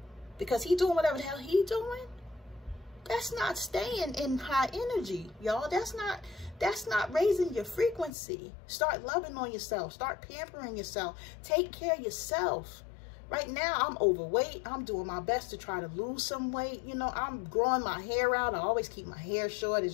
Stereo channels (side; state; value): right; drops out; at 8.1 s